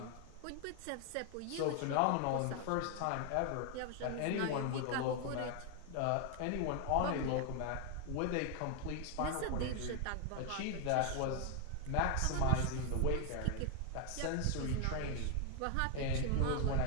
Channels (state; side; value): different; both; correlation 0.01